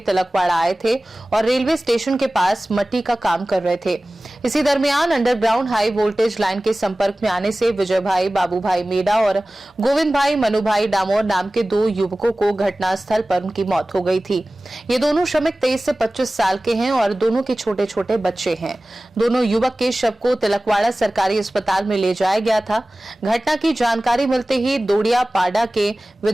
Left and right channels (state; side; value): normal; both; correlation 0.98